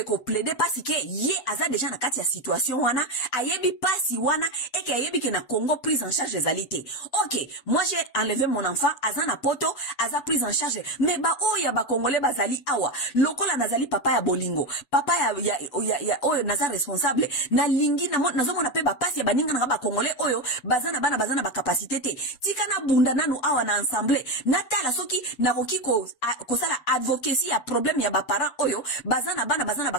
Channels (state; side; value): late; right; 7.0 ms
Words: ko plaider parce que ye aza déjà na kati ya situation wana ayebi pasi wana et que ayebi ke na Congo prise en charge ezalité. OK, moi j'ai enlevé mon enfant aza na poto aza prise en charge mais ba oya ba Congolais bazali awa lokola nazali papa ya bolingo papa ya oyo naza responsable na lingi na zomo na pe ba pasi ya baninga na ba Congolais oyo bazana ba capacité te tika na bunda nanu awa na ensemble natala soki na koki ko sala advocacy ya problème ya ba parents oyo bazana ba